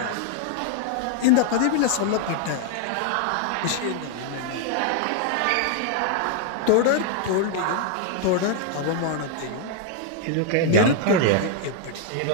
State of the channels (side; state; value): both; different; correlation 0.00